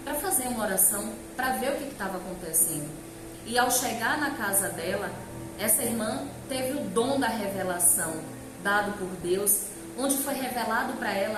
para fazer uma oração, para ver o que estava acontecendo. E ao chegar na casa dela, essa irmã teve o dom da revelação, dado por Deus, onde foi revelado para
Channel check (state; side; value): identical; both; correlation 1.00